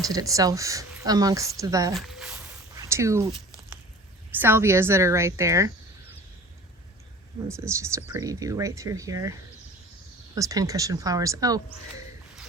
itself amongst the 2 salvias that are right there. This is just a pretty view right through here. Those pincushion flowers. Oh,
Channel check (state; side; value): normal; both; correlation 0.42